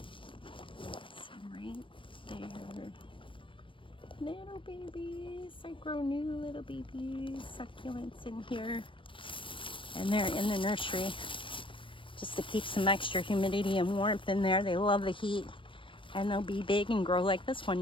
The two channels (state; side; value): late; right; 0.25 ms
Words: Some right there. Little babies. I grow new little babies. Succulents in here. And they're in the nursery. Just to keep some extra humidity and warmth in there. They love the heat. And they'll be big and grow like this one